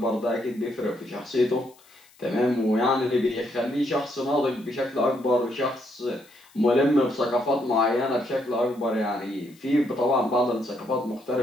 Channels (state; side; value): noise; left; hiss, 28 dB below the sound